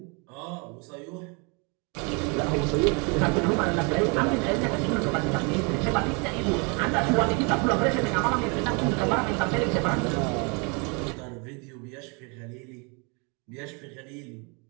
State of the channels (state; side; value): quieter; left; 32.8 dB